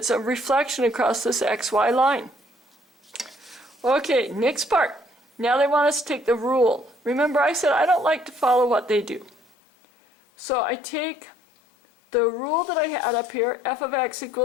a reflection across this xy line. Okay, next part. Now they want us to take the rule. Remember, I said I don't like to follow what they do. So I take the rule that I had up here, f of x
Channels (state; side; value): drops out; right; at 9.3 s